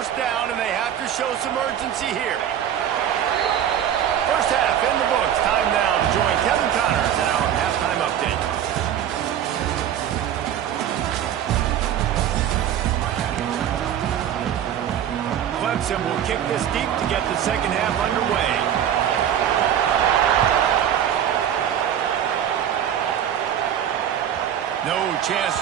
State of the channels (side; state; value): left; quieter; 9.9 dB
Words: down, and they have to show some urgency here. First half in the books. Time now to join Kevin Connors in our halftime update. Clemson will kick this deep to get the second half underway. No chance